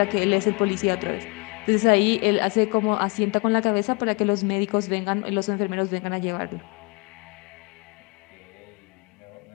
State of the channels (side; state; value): right; quieter; 30.1 dB